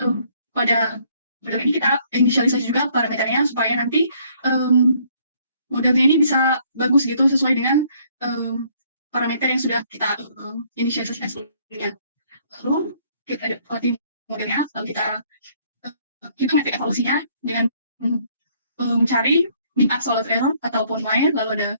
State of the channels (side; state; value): both; inverted; correlation -0.64